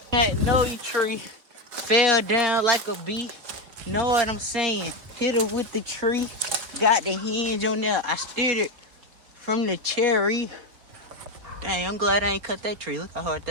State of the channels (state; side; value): late; left; 4.6 ms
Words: magnolia tree fell down like a bee. Know what I'm saying? Hit her with the tree. Got the hinge on there. I steered it from the cherry. Dang, I'm glad I ain't cut that tree. Look how hard